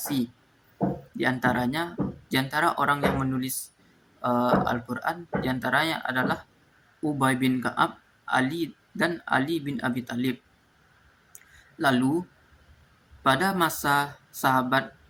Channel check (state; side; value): identical; both; correlation 1.00